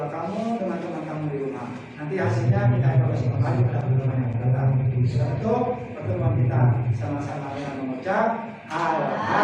kamu, dengan teman kamu di rumah. Nanti hasilnya kita evaluasi kembali pada pertemuan yang datang. Setelah itu pertemuan kita sama-sama dengan mengucap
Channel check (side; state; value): both; identical; correlation 1.00